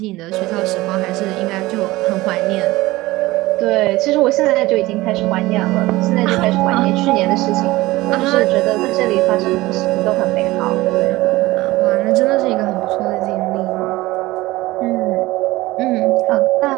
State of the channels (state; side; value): quieter; left; 19.0 dB